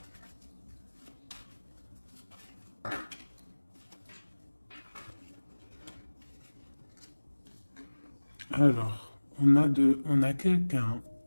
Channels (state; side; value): inverted; both; correlation -1.00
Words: Alors, on a